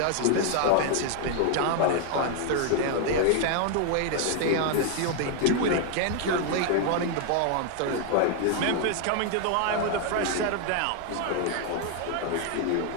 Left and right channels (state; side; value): different; both; correlation 0.00